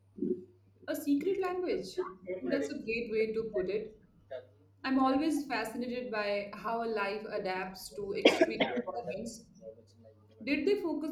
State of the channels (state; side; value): identical; both; correlation 1.00